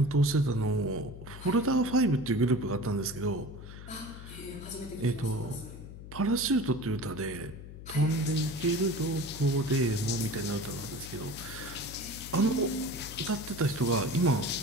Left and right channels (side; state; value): left; noise; hum, 13 dB below the sound